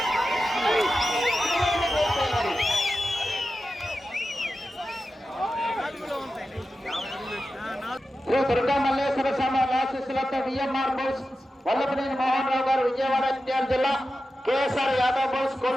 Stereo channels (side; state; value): both; normal; correlation 0.92